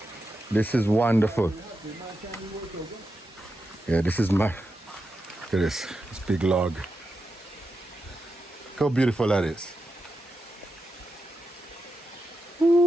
This is wonderful. Yeah, this is my. Look at this big log. Look how beautiful that is.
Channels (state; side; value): normal; both; correlation 0.88